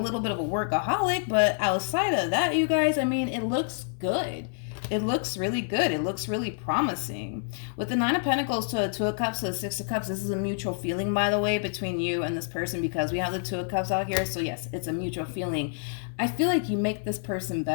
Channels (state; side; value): silent; right; 58 dB below the other